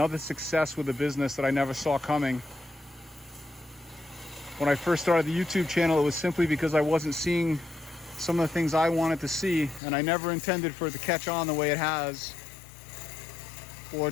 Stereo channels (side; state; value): right; drops out; at 9.8 s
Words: success with a business that I never saw coming. When I first started the YouTube channel, it was simply because I wasn't seeing some of the things I wanted to see, and I never intended for it to catch on the way it has or